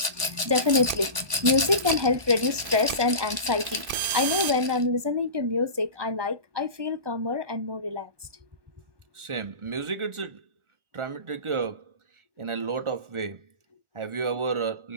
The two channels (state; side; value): late; left; 1.0 ms